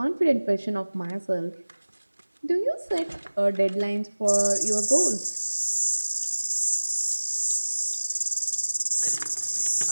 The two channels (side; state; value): both; inverted; correlation -1.00